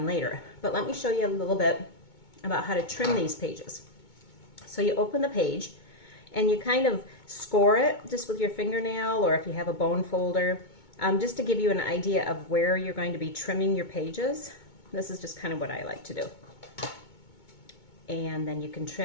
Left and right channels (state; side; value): late; right; 2.2 ms